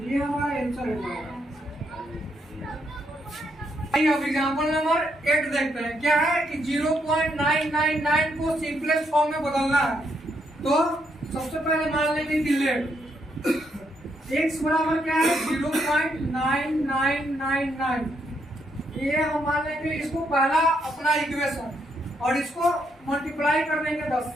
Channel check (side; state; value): both; normal; correlation 0.76